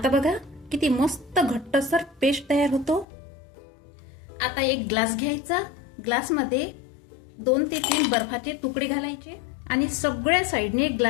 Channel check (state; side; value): drops out; right; at 3.1 s